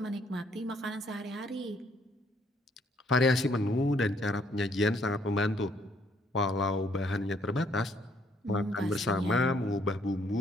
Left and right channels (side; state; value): both; normal; correlation 0.67